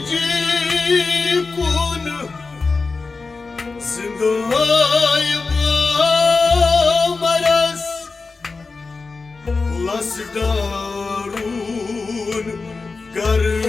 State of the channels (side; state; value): right; quieter; 4.2 dB